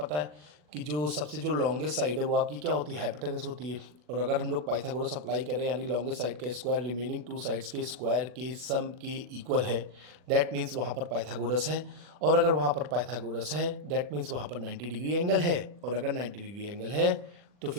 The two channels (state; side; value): late; left; 40 ms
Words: है कि जो सबसे जो लॉन्गेस्ट साइड है वो आपकी क्या होती है, हाइपोटेनस होती है। और अगर हम लोग पाइथागोरस अप्लाई करें यानी लॉन्गेस्ट साइड का स्क्वायर रिमेनिंग टू साइड्स के स्क्वायर के सम के इक्वल है, दैट मीन्स वहाँ पर पाइथागोरस है। और अगर वहाँ पर पाइथागोरस है दैट मीन्स वहाँ पर 90 डिग्री एंगल है। और अगर 90 डिग्री एंगल है तो